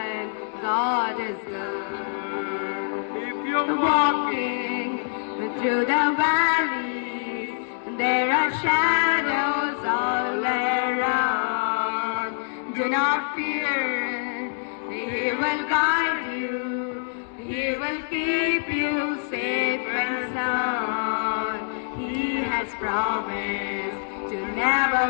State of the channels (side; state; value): right; silent; digital silence